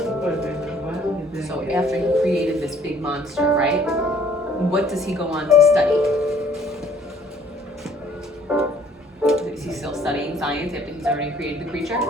then what did they so get? after he created this big monster, right? What does he go on to study? Is he still studying science after he's already created the creature?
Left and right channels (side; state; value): both; normal; correlation 0.58